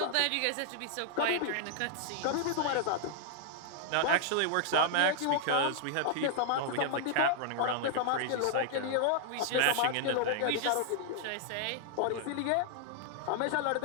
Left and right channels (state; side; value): different; both; correlation -0.01